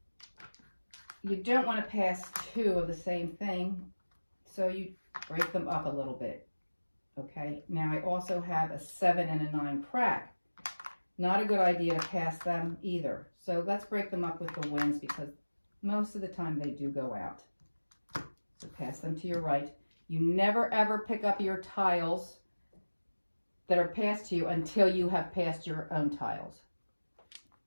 you don't want to pass 2 of the same thing, so you break them up a little bit. Okay, now I also have a 7 and a 9 crack. Not a good idea to pass them either. So let's break them up with the winds because most of the time they do go out. So pass them to your right. You never ever pick up your tiles that are passed to you until you have passed your own tiles.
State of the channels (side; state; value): both; inverted; correlation -1.00